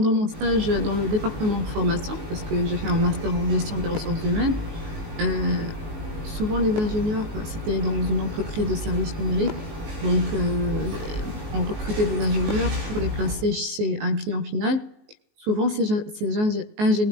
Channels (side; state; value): left; late; 19 ms